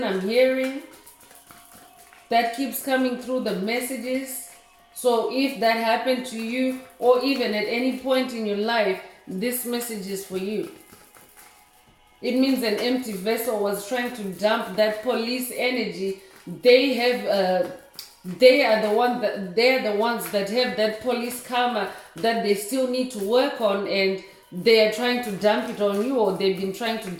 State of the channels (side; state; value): both; identical; correlation 1.00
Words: I'm hearing that keeps coming through the messages. So if that happened to you, or even at any point in your life, this message is for you. It means an empty vessel was trying to dump that police energy. They are the ones that have that police karma that they still need to work on, and they are trying to dump it on you, or they've been trying to